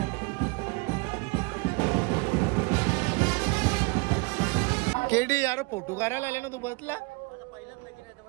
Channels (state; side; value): quieter; left; 28.1 dB